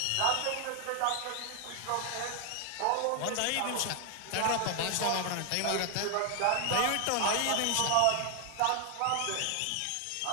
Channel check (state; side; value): different; both; correlation 0.00